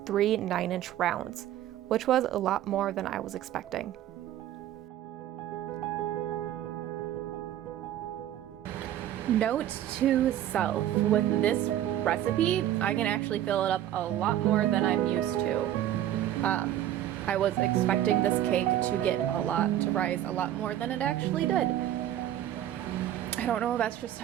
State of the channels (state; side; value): quieter; left; 12.1 dB